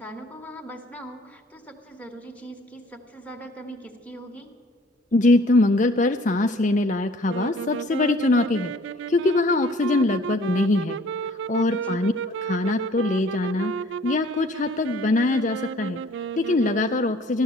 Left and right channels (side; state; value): both; normal; correlation 0.55